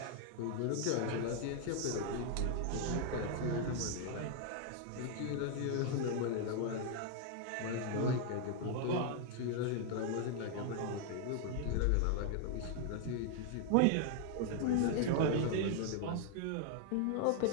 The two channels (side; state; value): both; different; correlation 0.00